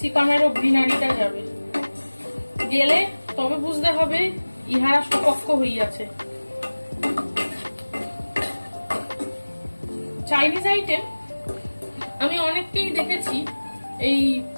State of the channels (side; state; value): both; inverted; correlation -1.00